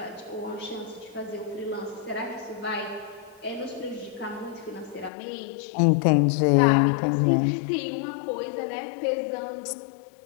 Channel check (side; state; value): right; drops out; at 5.1 s